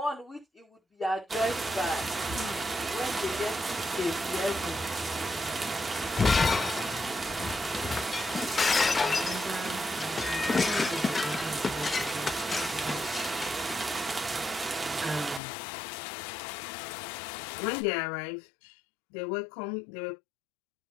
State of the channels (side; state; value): right; drops out; at 15.4 s